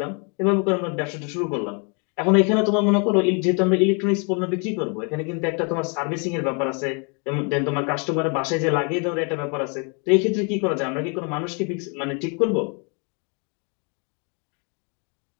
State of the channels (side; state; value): right; quieter; 35.6 dB